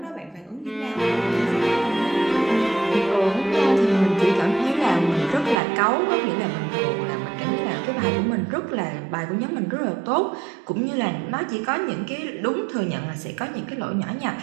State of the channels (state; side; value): drops out; left; at 5.6 s